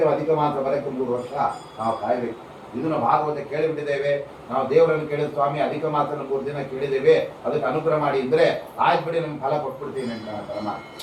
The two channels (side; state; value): both; identical; correlation 1.00